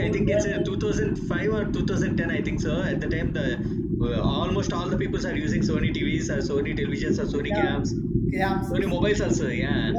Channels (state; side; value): identical; both; correlation 1.00